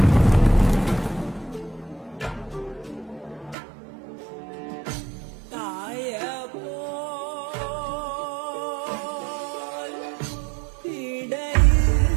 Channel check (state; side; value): drops out; left; at 3.6 s